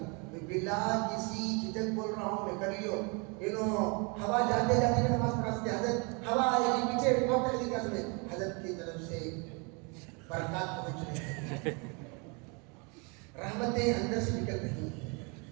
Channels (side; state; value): left; quieter; 32.0 dB